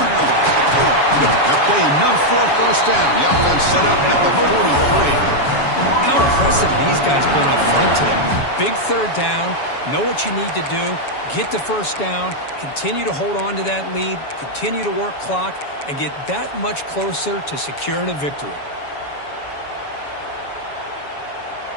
That play enough for a first down. The offense set up at the 43. How impressive these guys been up front today. Big third down, know what you need to do, get the first down, continue to hold on to that lead, continue to work clock, and get that much closer to securing a victory.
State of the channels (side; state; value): right; late; 7.1 ms